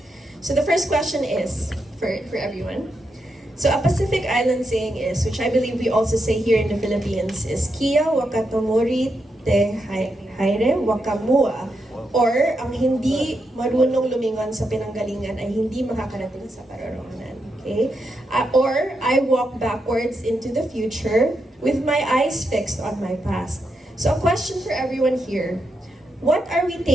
So the first question is, for everyone. So a Pacific Island saying is, which I believe we also say here in the Philippines, is Kia wakatomori te haire wakamua. Or, ang hindi marunong lumingon sa pinanggalingan ay hindi makakarating sa paroroonan. Okay? Or, I walk backwards into the future with my eyes fixed on my past. So, a question for everyone here. What are we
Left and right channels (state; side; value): normal; both; correlation 0.84